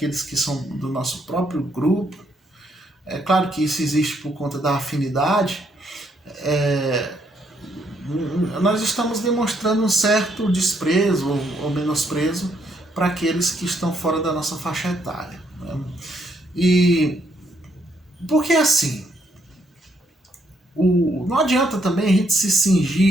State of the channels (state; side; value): normal; both; correlation 0.73